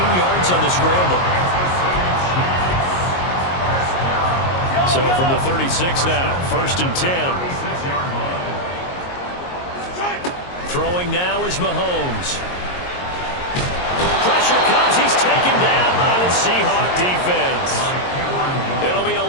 yards on the scramble. So from the 36 now, 1st and 10. Throwing now is Mahomes. Pressure comes, he's taken down by the Seahawk defense. It'll be a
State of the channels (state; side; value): late; right; 22 ms